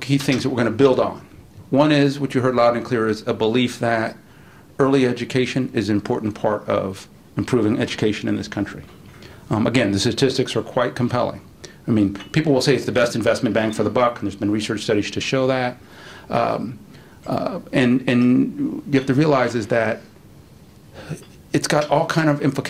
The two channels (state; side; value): identical; both; correlation 1.00